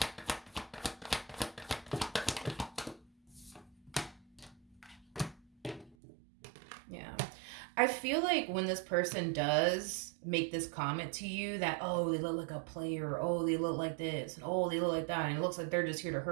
Yeah. I feel like when this person does make this comment to you that, oh, they look like a player, oh, they look like this, and oh, they look like that, and it looks like they're just here to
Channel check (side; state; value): left; drops out; at 6.0 s